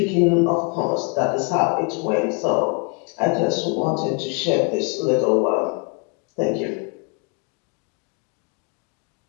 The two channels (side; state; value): right; quieter; 33.0 dB